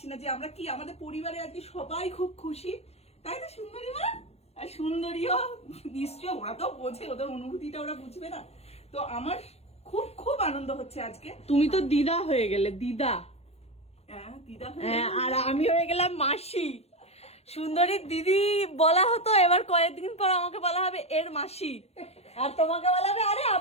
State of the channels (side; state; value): right; late; 0.30 ms